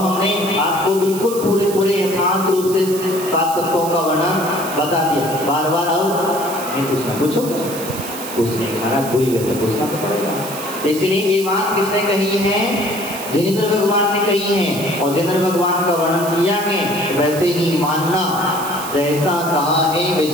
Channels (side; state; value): right; noise; hiss, 10 dB below the sound